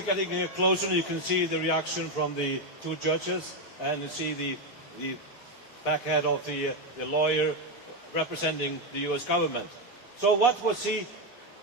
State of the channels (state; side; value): normal; both; correlation 0.07